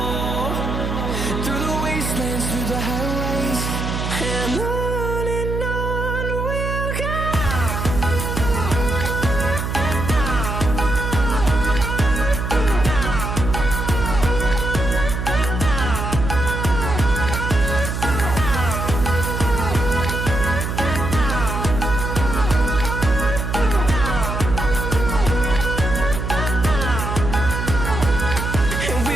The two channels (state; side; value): noise; right; hum, 3 dB below the sound